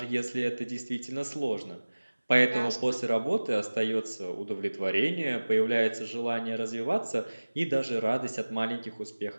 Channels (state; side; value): inverted; both; correlation -1.00